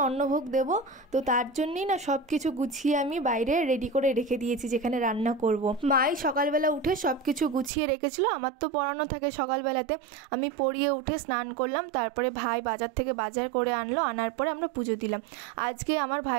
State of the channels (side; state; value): left; drops out; at 7.7 s